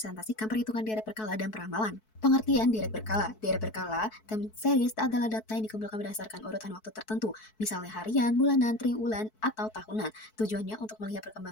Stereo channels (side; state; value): right; late; 4.6 ms